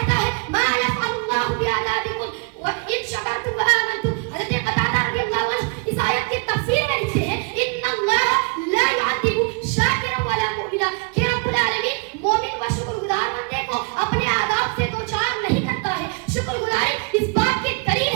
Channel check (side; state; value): left; quieter; 34.1 dB